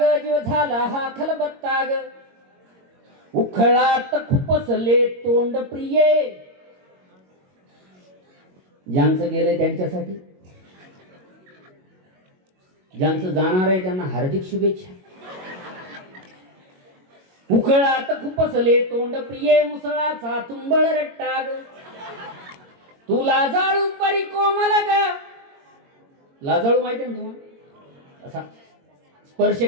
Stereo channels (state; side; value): late; left; 22 ms